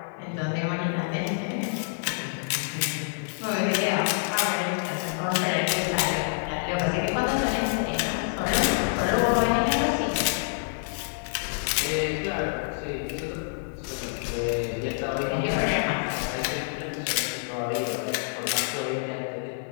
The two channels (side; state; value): right; silent; 60 dB below the other